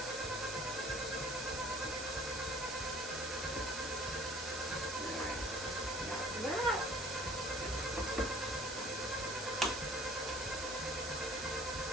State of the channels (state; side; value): noise; right; hiss, 7 dB below the sound